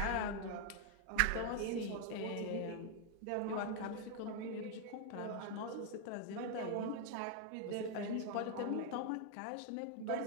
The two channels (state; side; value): different; both; correlation 0.00